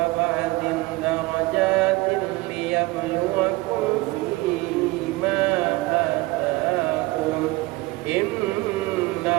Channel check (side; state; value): left; quieter; 21.6 dB